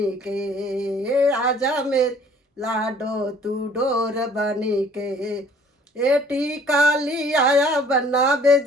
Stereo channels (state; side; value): normal; both; correlation 0.55